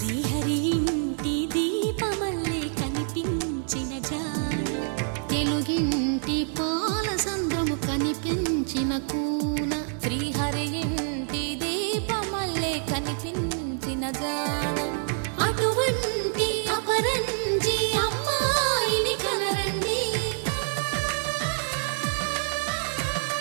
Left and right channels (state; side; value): silent; left; digital silence